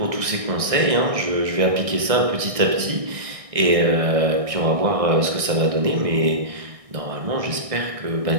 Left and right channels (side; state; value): left; late; 1.6 ms